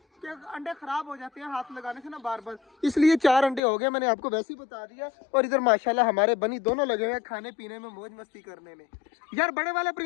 कि अंडे खराब हो जाते हैं हाथ लगाने से ना बार बार, इसलिए 4 अंडे हो गए, मैंने आपको वैसे ही बता दिया। और इधर माशाल्लाह हमारे बनी दोनों लगे हुए हैं खाने पीने में, मौज मस्ती करने में। यार बड़े वाले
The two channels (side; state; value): right; drops out; at 3.6 s